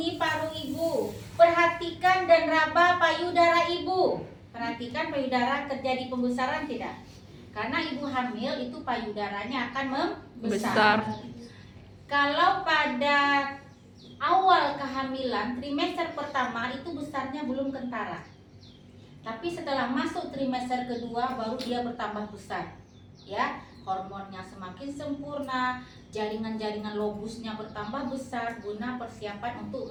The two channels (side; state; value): both; identical; correlation 1.00